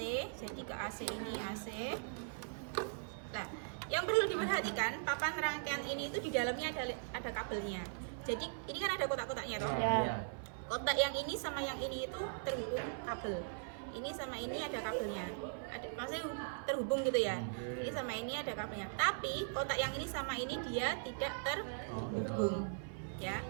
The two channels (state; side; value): silent; left; 51 dB below the other